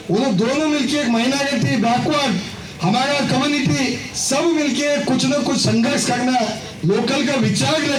उन्हें दोनों मिलके एक माइनॉरिटी बैकवर्ड हमारा कम्युनिटी सब मिलके कुछ न कुछ संघर्ष करना, लोकल का विचार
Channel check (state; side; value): identical; both; correlation 1.00